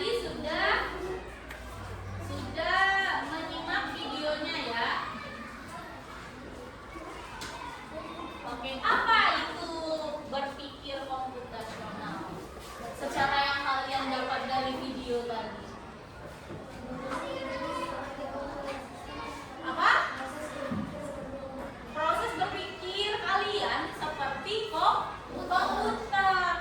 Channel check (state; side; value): identical; both; correlation 1.00